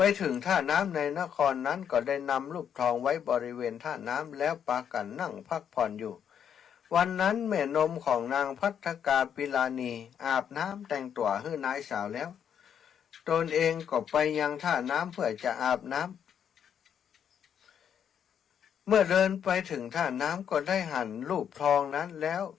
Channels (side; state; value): right; quieter; 8.5 dB